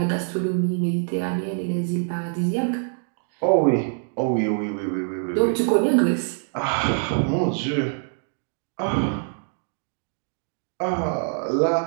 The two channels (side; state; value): left; silent; 62 dB below the other